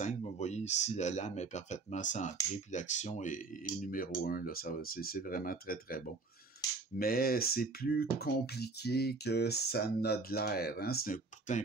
vous voyez ici, la lame est parfaitement centrée, puis l'action est numéro 1, là, c'est vraiment très, très bon. Mais c'est plus compliqué que ça n'a de l'air, hein? C'est pourtant un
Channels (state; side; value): quieter; left; 3.8 dB